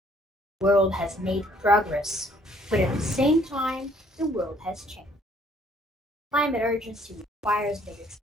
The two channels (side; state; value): both; normal; correlation 0.62